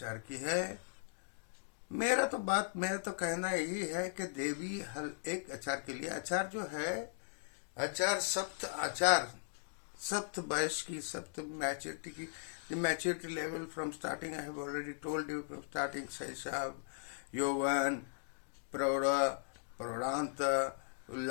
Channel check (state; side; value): silent; right; digital silence